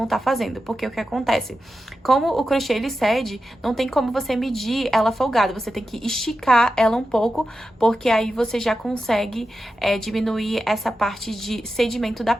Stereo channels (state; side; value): normal; both; correlation 0.91